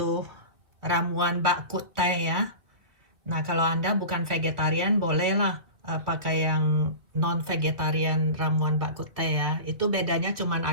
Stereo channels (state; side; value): late; left; 2.1 ms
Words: ramuan bak kut teh ya. Nah, kalau Anda bukan vegetarian, bolehlah pakai yang non-vegetarian ramuan bak kut teh ya. Itu bedanya cuman